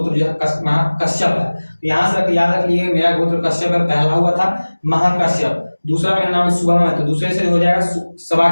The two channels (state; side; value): inverted; both; correlation -1.00